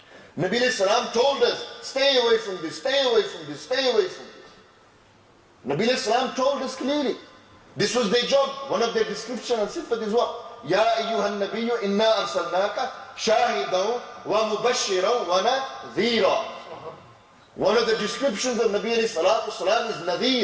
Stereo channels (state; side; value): identical; both; correlation 1.00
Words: Nabi alayhi salam told us, stay away from this, stay away from this, stay away from this. Nabi alayhi salam told us clearly. This was their job. One of their description and sifat is what? Ya ayyuhan nabiyyu inna arsalnaka shahidan wa mubashiran wa nadhira. One of the descriptions of Nabi alayhi salatu salam is